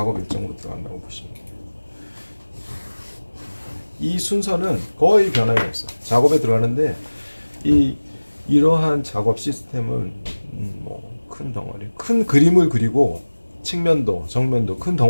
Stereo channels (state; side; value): inverted; both; correlation -1.00